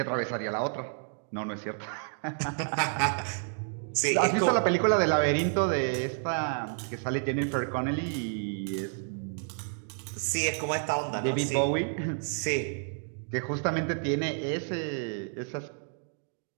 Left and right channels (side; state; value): left; silent; 58 dB below the other